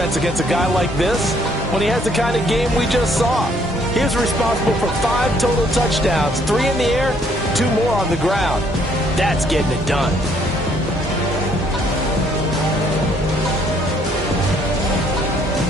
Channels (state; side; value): normal; both; correlation 0.66